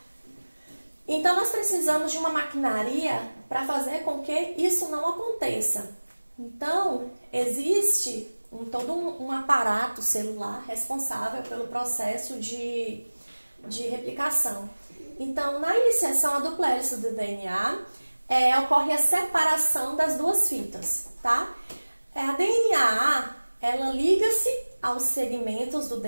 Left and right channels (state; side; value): inverted; both; correlation -1.00